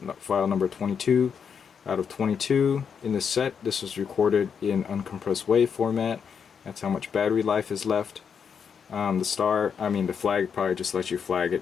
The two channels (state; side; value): quieter; right; 6.9 dB